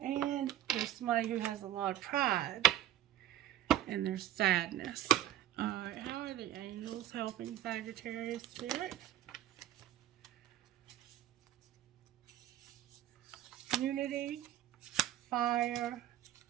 there's somebody who has a lot of pride, and there's sadness. Alright, how are the angels helping Sagittarius spirit? Unity, fire,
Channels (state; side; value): quieter; left; 12.6 dB